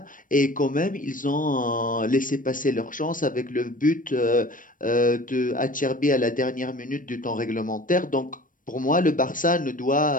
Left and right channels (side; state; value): right; late; 0.39 ms